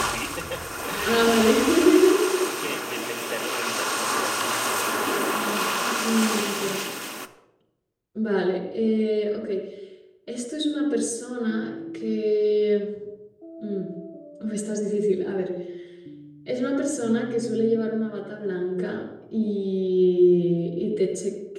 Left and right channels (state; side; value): identical; both; correlation 1.00